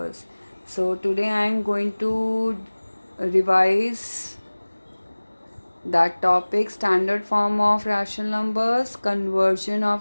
So today I am going to revise that topic, standard form of rational numbers, conversion of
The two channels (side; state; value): both; inverted; correlation -1.00